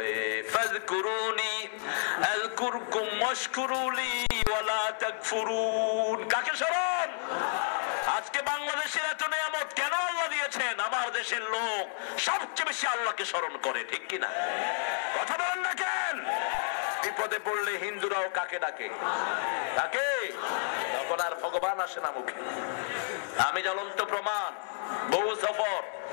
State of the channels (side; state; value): right; silent; 57 dB below the other